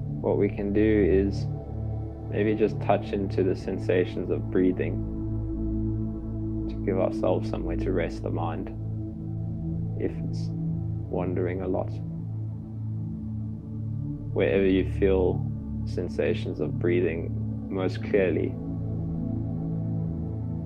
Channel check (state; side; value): identical; both; correlation 1.00